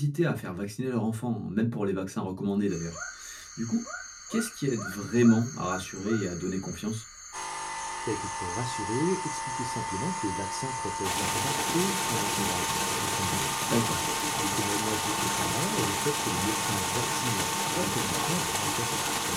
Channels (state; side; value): identical; both; correlation 1.00